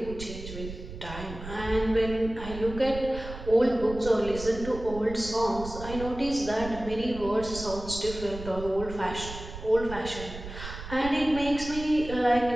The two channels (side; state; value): right; noise; rumble, 11 dB below the sound